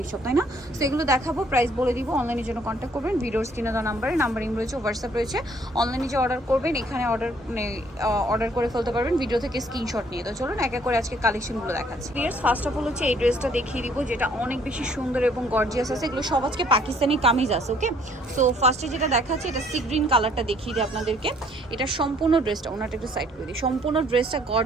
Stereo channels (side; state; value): both; normal; correlation 0.62